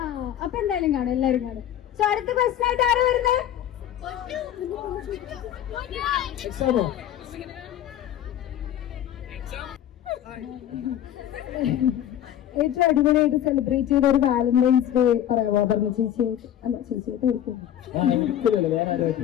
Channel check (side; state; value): right; quieter; 11.1 dB